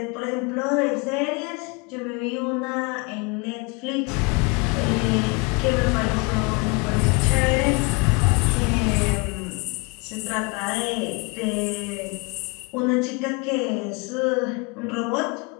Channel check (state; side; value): quieter; right; 30.0 dB